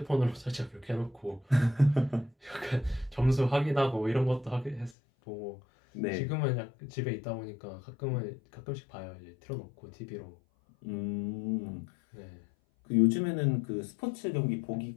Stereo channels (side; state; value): right; drops out; at 5.0 s